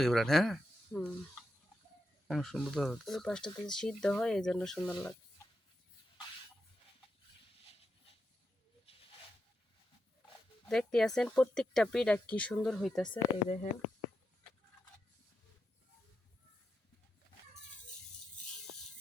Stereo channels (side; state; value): both; normal; correlation 0.86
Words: বিরাট। হ্যাঁ, হুম, অনেক সুন্দর তো। ওই পাশটাতে সিদ্ধ হয়, এই জন্য সুন্দর লাগে। দেখতে আছেন প্রত্যেকটা পিঠা কি সুন্দর হইতাছে, এই দেখেন।